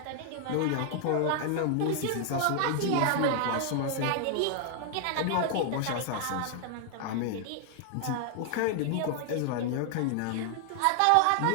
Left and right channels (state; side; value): different; both; correlation 0.00